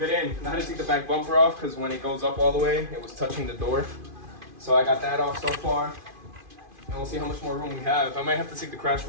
in. I had to take the back bumper off because when it goes up all the way, it was touching the door. So I got that off so far. And we'll see how much more room we have. I might have to take the crash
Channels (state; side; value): late; left; 2.5 ms